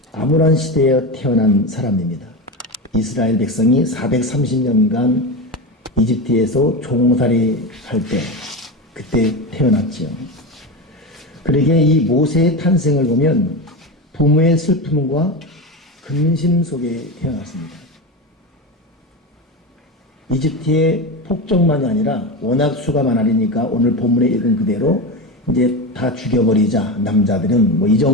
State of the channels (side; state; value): both; normal; correlation 0.20